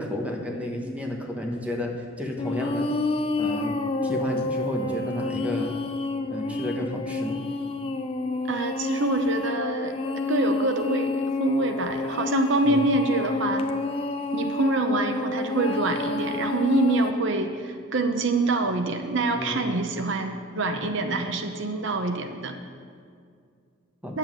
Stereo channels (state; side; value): normal; both; correlation 0.39